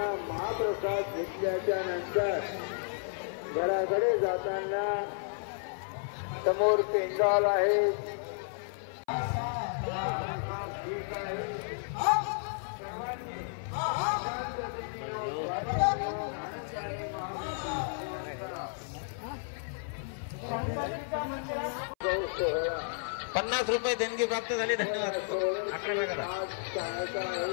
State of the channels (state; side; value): silent; right; 56 dB below the other